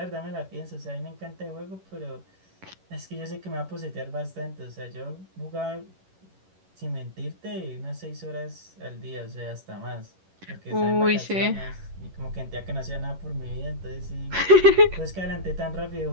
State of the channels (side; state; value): left; late; 11 ms